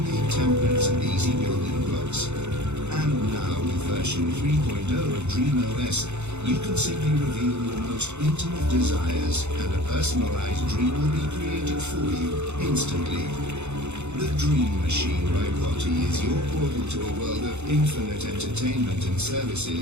templates and easy building blocks. And now with version 3.0 of DreamOS, you can simply reveal your most intimate desires and a personalized dream will be created for you instantly. The Dream Machine by Watty is your portal to a world of infinite entertainment and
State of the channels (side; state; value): left; late; 0.82 ms